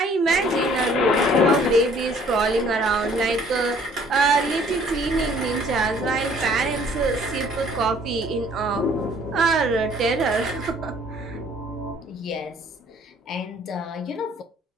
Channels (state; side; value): normal; both; correlation 0.58